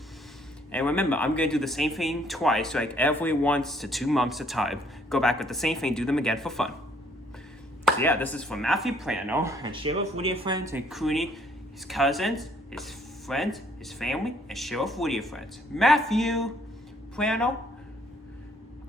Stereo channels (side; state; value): both; normal; correlation 0.65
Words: And remember, I'm going to do the same thing twice, like every 1 to 2 months at a time. Go back with the same thing, do them again for fun. So yeah, this is from Matthew Plano, and Sheriff Woody and friends, including his cousins, his friends, his family, and Sheriff Woody and friends. Matthew Plano,